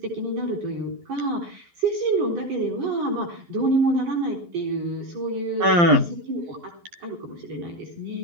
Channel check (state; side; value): late; left; 12 ms